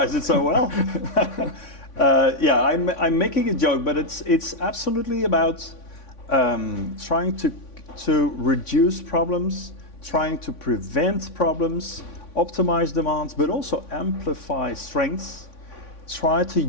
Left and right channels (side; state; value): right; late; 3.5 ms